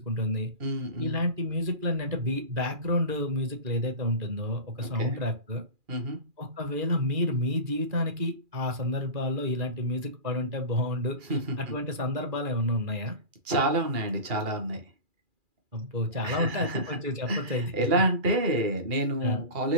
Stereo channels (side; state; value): left; late; 2.4 ms